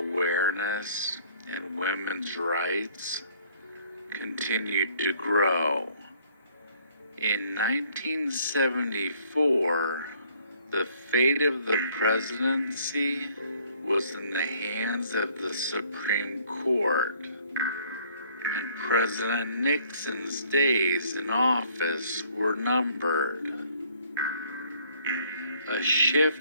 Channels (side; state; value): both; inverted; correlation -0.60